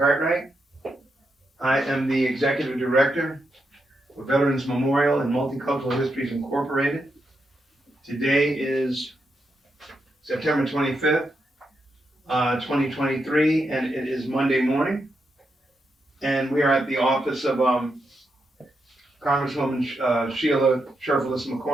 I am the Executive Director for Veterans Memorial and Multicultural Histories Incorporated. Today is September 25th, 2023, and it is Monday morning. And we are at the office of Congresswoman Sheila Sherfullis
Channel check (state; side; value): normal; both; correlation 0.84